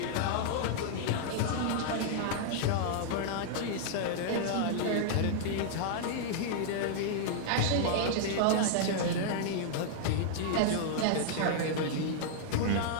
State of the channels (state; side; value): different; both; correlation -0.01